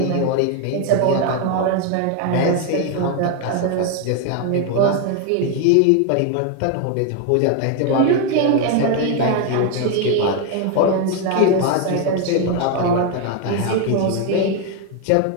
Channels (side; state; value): both; different; correlation 0.01